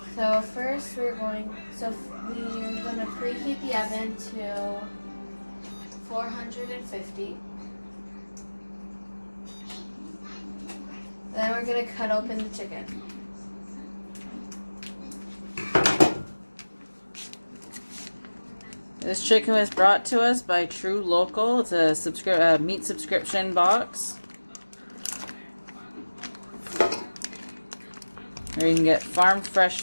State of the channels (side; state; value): both; inverted; correlation -1.00